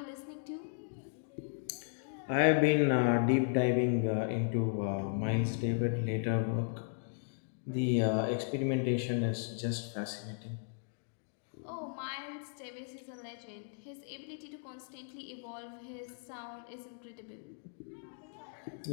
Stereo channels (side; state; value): right; silent; digital silence